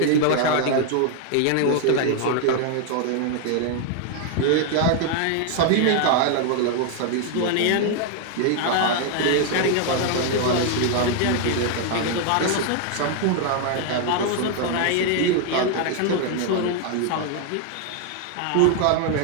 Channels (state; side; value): different; both; correlation 0.00